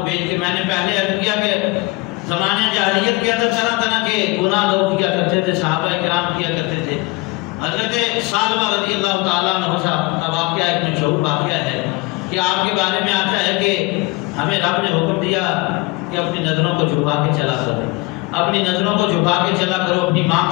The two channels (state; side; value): quieter; right; 23.8 dB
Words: بھیج کے۔ میں نے پہلے عرض کیا کہ زمانے جاہلیت کے اندر طرح طرح کے گناہ لوگ کیا کرتے تھے، صحابہ کرام کیا کرتے تھے۔ حضرت ثعلبہ رضی اللہ تعالیٰ عنہ کا واقعہ ایک مشہور واقعہ ہے کہ آپ کے بارے میں آتا ہے کہ ہمیں رب نے حکم دیا کہ اپنی نظروں کو جھکا کے چلا کرو، اپنی نظروں کو جھکا کے چلا کرو، اپنی ماں